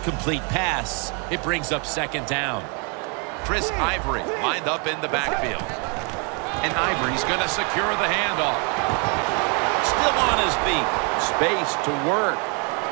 pass, it brings up second down. Chris Ivory lined up in the backfield. And Ivory's going to secure the handoff. Still on his feet. Space to work.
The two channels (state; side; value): quieter; left; 35.3 dB